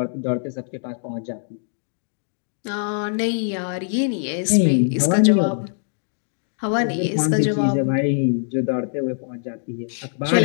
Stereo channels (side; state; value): right; silent; digital silence